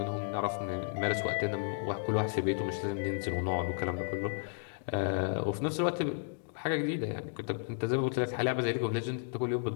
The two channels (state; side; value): silent; right; digital silence